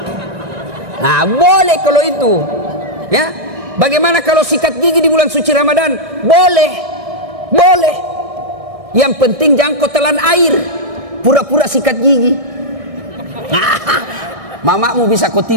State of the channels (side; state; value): left; late; 1.7 ms